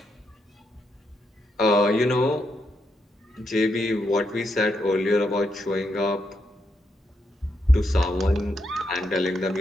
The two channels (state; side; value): normal; both; correlation 0.81